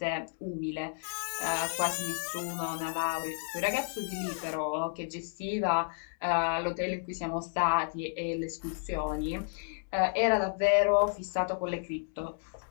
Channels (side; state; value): right; silent; digital silence